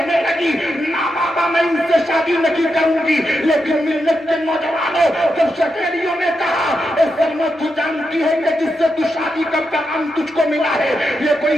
لگی نا بابا میں ان سے شادی نہیں کروں گی۔ لیکن ملت کے نوجوانوں، جب سہیلیوں نے کہا اے سلمہ تو جانتی ہے کہ جس سے تو شادی کا پیغام تجھ کو ملا ہے یہ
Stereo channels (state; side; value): normal; both; correlation 0.85